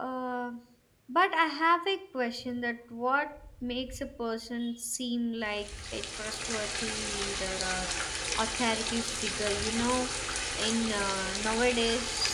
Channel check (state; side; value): identical; both; correlation 1.00